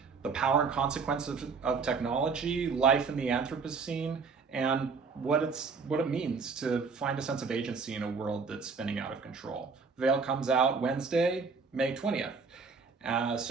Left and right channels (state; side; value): quieter; left; 5.0 dB